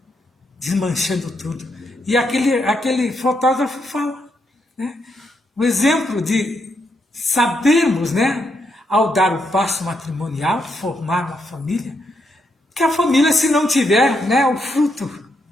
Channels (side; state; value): both; normal; correlation 0.79